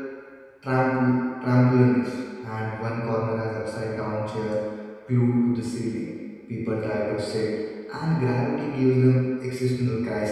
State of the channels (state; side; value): identical; both; correlation 1.00